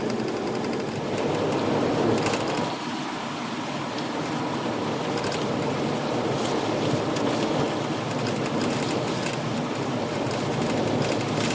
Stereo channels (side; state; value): both; identical; correlation 1.00